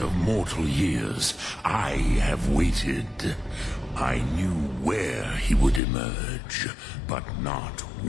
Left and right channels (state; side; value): drops out; right; at 5.8 s